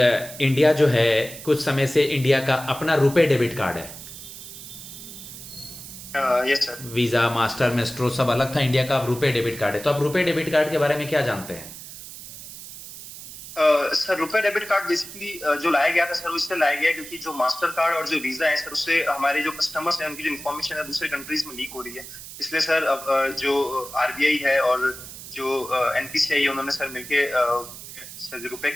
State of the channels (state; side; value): noise; right; hiss, 13 dB below the sound